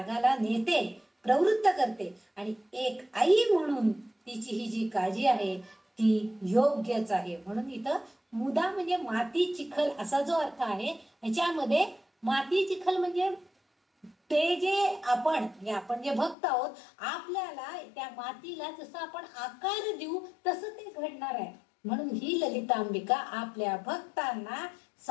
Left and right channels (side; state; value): right; drops out; at 16.4 s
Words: नेते, प्रवृत्त करते. आणि एक आई म्हणून तिची ही जी काळजी आहे ती योग्यच आहे. म्हणून इथं मुदा म्हणजे माती चिखल असा जो अर्थ आहे, ह्याच्यामध्ये माती चिखल म्हणजे ते जे आपण जे भक्त आहोत, आपल्याला त्या मातीला जसं आपण आकार देऊ तसं ते घडणार आहे. म्हणून ही ललितांबिका आपल्या भक्तांना,